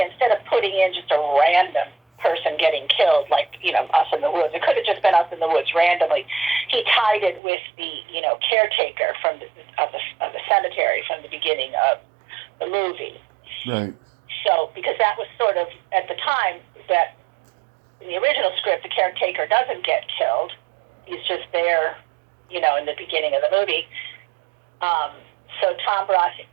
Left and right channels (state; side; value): drops out; left; at 7.4 s